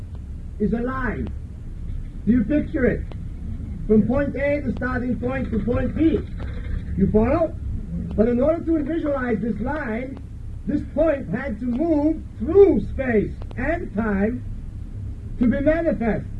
is a line. Do you picture it? From point A, the starting point, to point B. You follow? But in order to visualize this line, this point had to move through space and time to be manifest.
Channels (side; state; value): both; identical; correlation 1.00